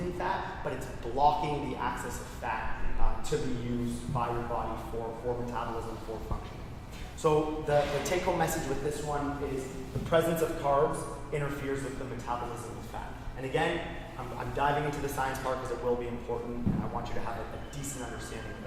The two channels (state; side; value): identical; both; correlation 1.00